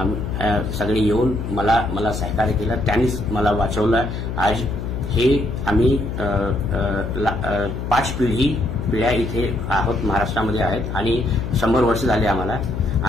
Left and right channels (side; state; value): left; noise; hum, 5 dB below the sound